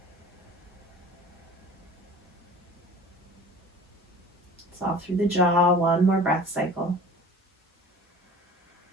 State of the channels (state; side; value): normal; both; correlation 0.42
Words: Soft through the jaw, one more breath cycle.